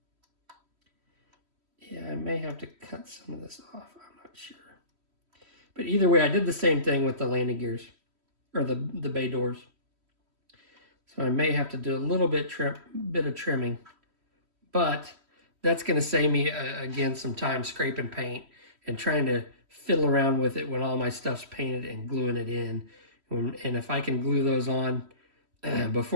Yeah, I may have to cut some of this off, I'm not sure. But either way, I did the same thing with the landing gears, or the bay doors. So I may have to do a little bit of trimming, but that's going to save me, again, some time scraping paint and trying to fiddle around with it when all my stuff's painted and gluing it in. And if I can glue those on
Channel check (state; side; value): late; left; 3.1 ms